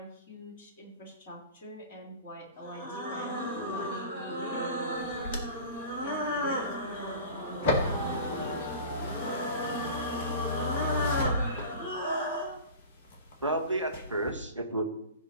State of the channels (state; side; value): inverted; both; correlation -0.37